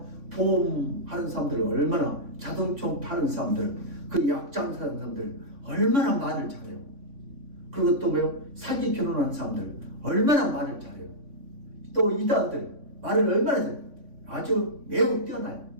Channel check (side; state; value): left; late; 3.6 ms